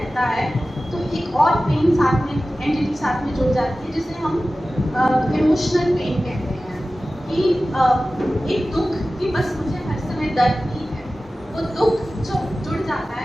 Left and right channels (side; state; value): both; normal; correlation 0.96